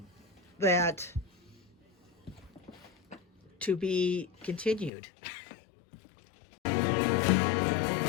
that to be continued.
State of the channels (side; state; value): right; drops out; at 4.9 s